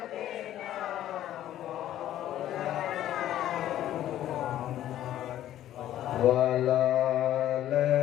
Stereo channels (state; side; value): quieter; right; 12.5 dB